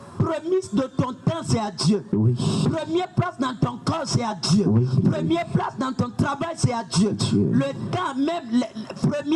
Premier de ton temps, c'est à Dieu. Oui. Première place dans ton corps, c'est à Dieu. Oui. Première place dans ton travail, c'est à Dieu. Dieu. Le temps, même le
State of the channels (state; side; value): identical; both; correlation 1.00